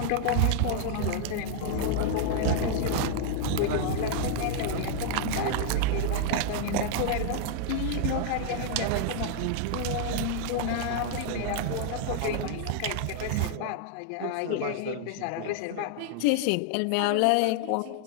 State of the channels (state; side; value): different; both; correlation 0.00